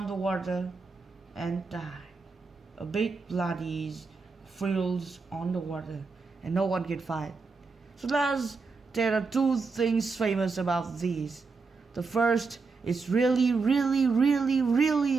the water and die. A big bloody frills on the water and no one can fight. So there are 2 things famous about these. The first is really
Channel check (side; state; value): left; quieter; 4.4 dB